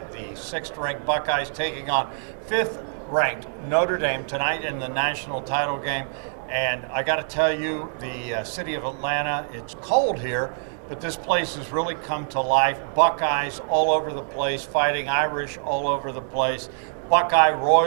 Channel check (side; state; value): left; silent; digital silence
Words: The 6th-ranked Buckeyes taking on 5th-ranked Notre Dame tonight in the national title game. And I got to tell you, the city of Atlanta, it's cold here, but this place has really come to life. Buckeyes all over the place, fighting Irish all over the place. Buckeye